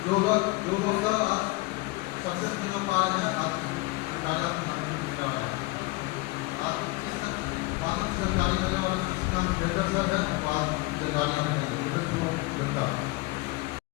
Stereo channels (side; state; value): right; quieter; 22.5 dB